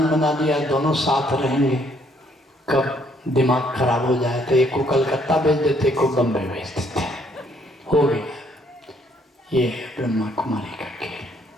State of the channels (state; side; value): normal; both; correlation 0.67